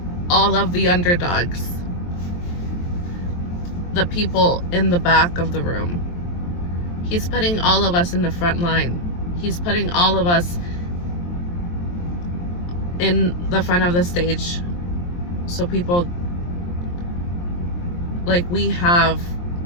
all of the underdogs, the people in the back of the room. He's putting all of us in the front line. He's putting all of us in the front of the stage. So people, like we have,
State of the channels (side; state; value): right; late; 23 ms